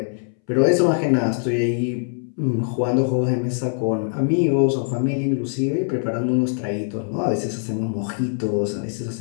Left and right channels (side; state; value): right; silent; 63 dB below the other